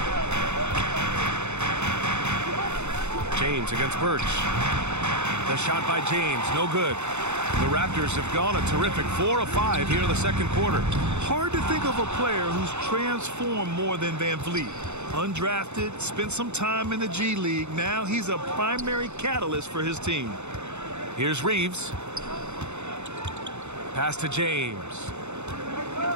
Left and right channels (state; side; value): late; left; 0.82 ms